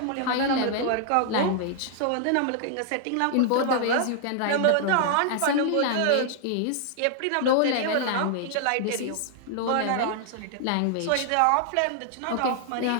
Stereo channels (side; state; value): both; different; correlation 0.00